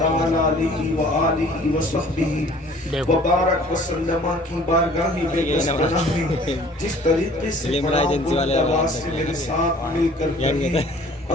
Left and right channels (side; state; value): both; normal; correlation 0.52